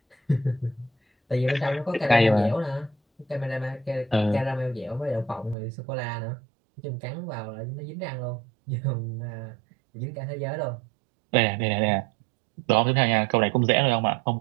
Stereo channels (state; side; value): drops out; left; at 5.6 s